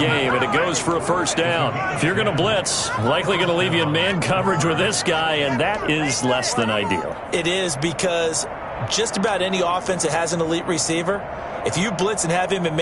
and it goes for a first down. If you're going to blitz, likely going to leave you in man coverage with this guy, and that is less than ideal. It is, because just about any offense that has an elite receiver, if you blitz and have him in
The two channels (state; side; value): identical; both; correlation 1.00